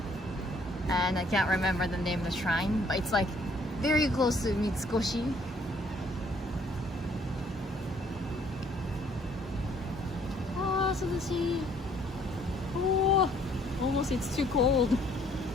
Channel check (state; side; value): normal; both; correlation 0.63